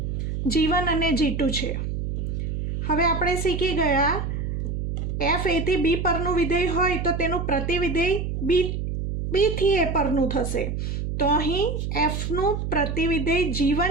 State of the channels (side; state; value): right; noise; hum, 3 dB below the sound